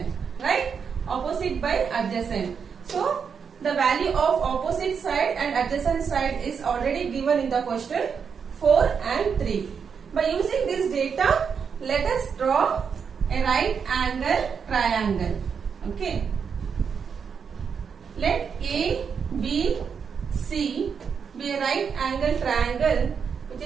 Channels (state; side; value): quieter; left; 6.5 dB